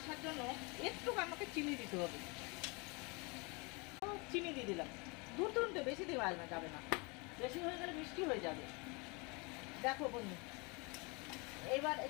জন্য একটু আমাকে চিনি দিতে হবে, চিনি দিয়ে দিলাম 2-3টে, বেশি দেওয়া যাবে না, বেশি হয়ে গেলে মিষ্টি হয়ে যাবে। দেখো বন্ধু, এবার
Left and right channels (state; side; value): quieter; right; 29.3 dB